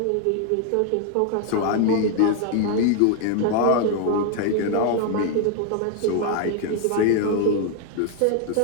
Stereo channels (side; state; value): both; different; correlation 0.00